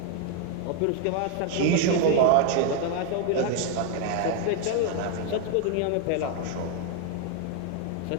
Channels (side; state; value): both; different; correlation 0.00